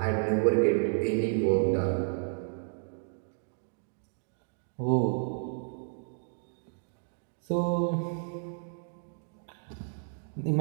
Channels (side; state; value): left; silent; digital silence